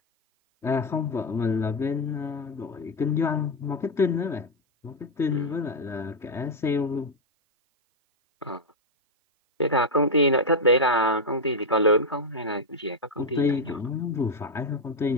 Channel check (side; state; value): both; normal; correlation 0.03